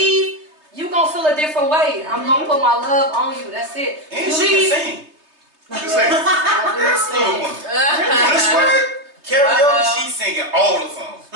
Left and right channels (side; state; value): left; late; 3.2 ms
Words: you gonna feel a different way. I'm gonna put my love on you. That's it. And You she leave. can sing. You say, I do sing. This way, karaoke, she's singing all the songs.